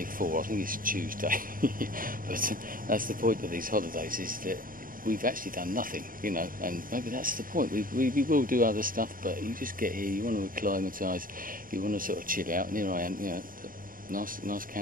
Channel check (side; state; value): left; late; 0.41 ms